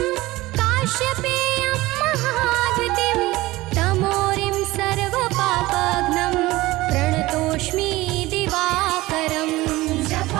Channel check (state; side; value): quieter; left; 18.9 dB